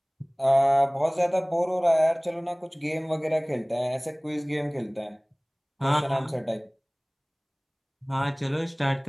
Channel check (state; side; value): identical; both; correlation 1.00